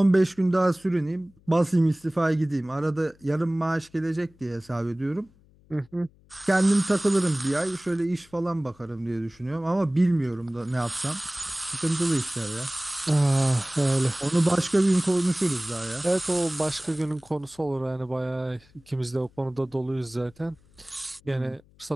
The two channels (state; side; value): noise; left; hum, 29 dB below the sound